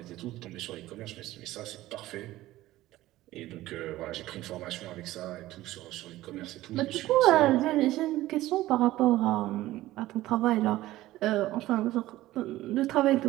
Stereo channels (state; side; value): quieter; left; 16.1 dB